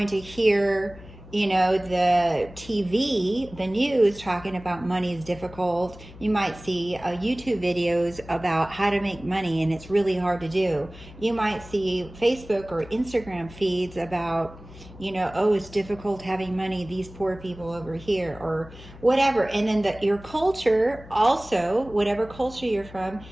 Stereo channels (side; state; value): left; noise; hum, 18 dB below the sound